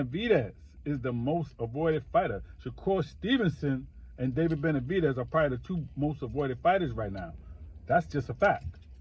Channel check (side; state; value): both; identical; correlation 1.00